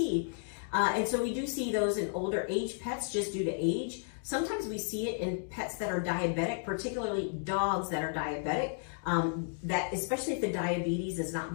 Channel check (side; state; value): right; silent; digital silence